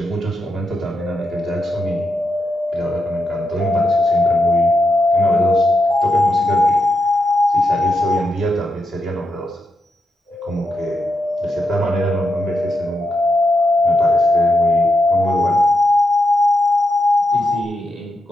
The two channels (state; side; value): normal; both; correlation 0.84